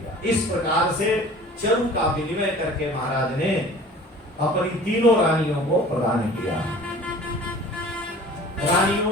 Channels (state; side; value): normal; both; correlation 0.45